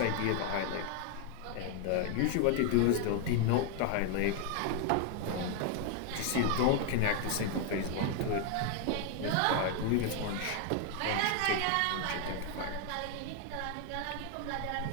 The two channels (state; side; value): different; both; correlation 0.01